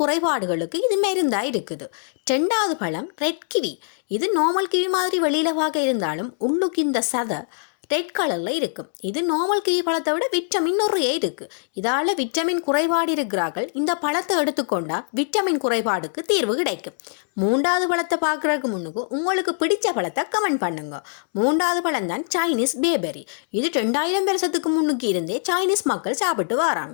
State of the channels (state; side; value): silent; right; digital silence